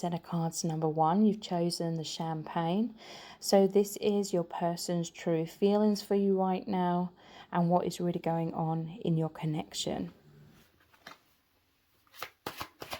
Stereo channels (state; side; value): identical; both; correlation 1.00